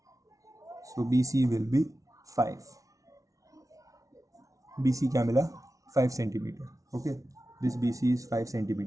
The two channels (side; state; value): left; late; 0.17 ms